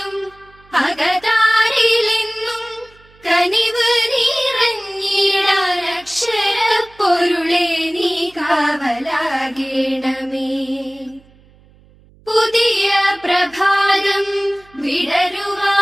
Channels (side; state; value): right; noise; hum, 28 dB below the sound